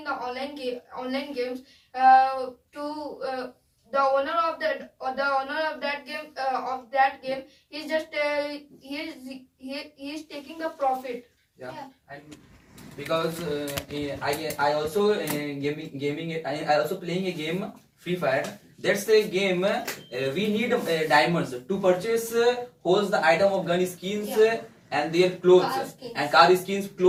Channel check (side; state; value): both; identical; correlation 1.00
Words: the online games, the owner of that game is just he is taking the profit. Yeah. And because I also I also playing a game Free Fire. That's a game we need diamonds to purchase holds the item of gun skins and their clothes Car skins. and car skins,